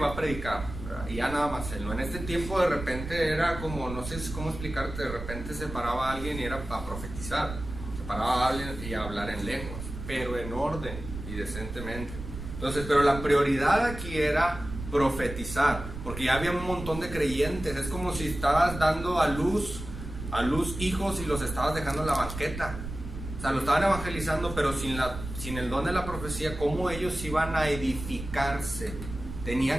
a predicar, ¿verdad? Y ya nada más él, ¿no? En este tiempo de repente era como, no sé cómo explicarte, de repente se paraba alguien y era para profetizar, se paraba alguien y a hablar en lenguas, pero en orden y decentemente. Entonces, pero la prioridad aquí era profetizar, porque ya había un montón de creyentes. Es como si estabas dando a luz hijos y los estabas dejando en la banqueta. O sea, lo estaban evangelizando, pero sin el don de la profecía, ¿cómo ellos iban a edificarse?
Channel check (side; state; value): right; noise; rumble, 9 dB below the sound